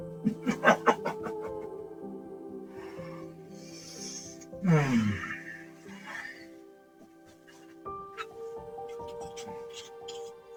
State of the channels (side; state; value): both; identical; correlation 1.00